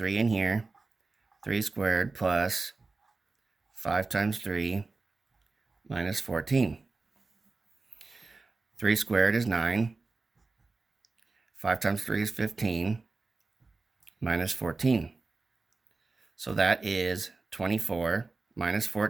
in here. 3 squared plus 5 times 3 minus 14. 3 squared is 9. 5 times 3 is 15 minus 14. So that is 24 minus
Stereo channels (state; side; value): quieter; left; 3.7 dB